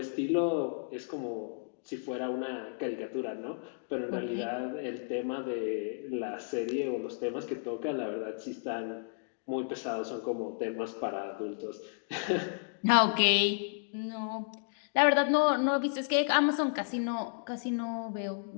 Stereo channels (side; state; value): right; silent; digital silence